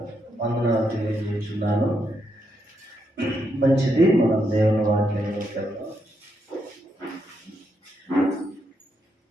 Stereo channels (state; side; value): normal; both; correlation 0.80